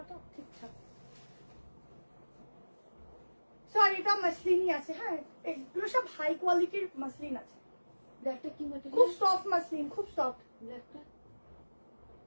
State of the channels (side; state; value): both; inverted; correlation -1.00